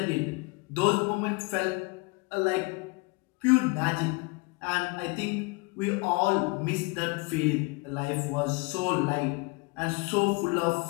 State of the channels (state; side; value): quieter; right; 28.0 dB